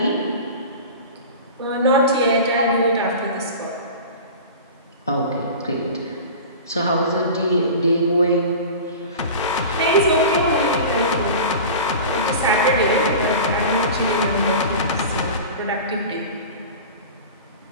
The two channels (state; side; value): inverted; both; correlation -0.34